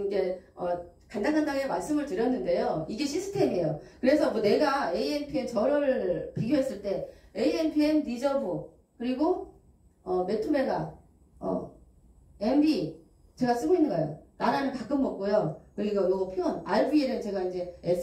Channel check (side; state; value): both; identical; correlation 1.00